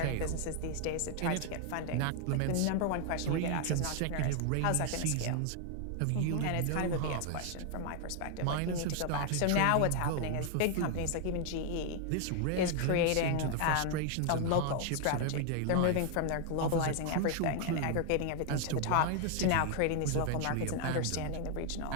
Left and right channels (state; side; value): different; both; correlation 0.00